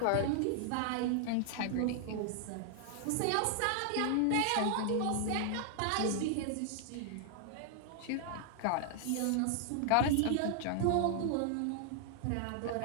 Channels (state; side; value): different; both; correlation 0.00